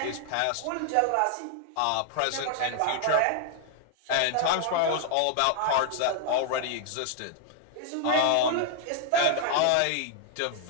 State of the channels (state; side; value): different; both; correlation 0.00